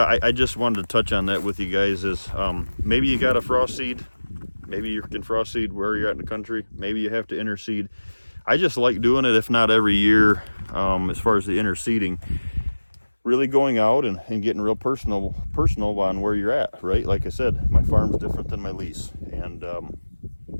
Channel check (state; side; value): inverted; both; correlation -1.00